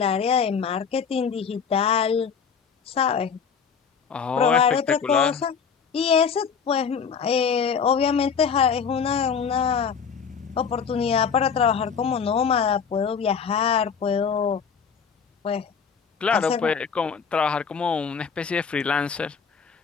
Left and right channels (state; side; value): quieter; right; 6.5 dB